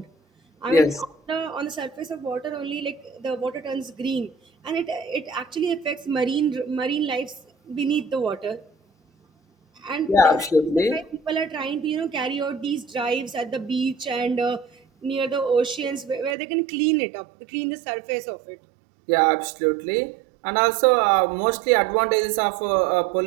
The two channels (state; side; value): drops out; left; at 16.4 s